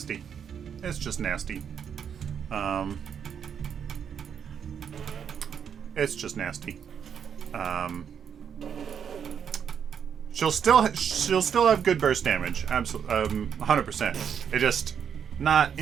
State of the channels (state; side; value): quieter; left; 7.8 dB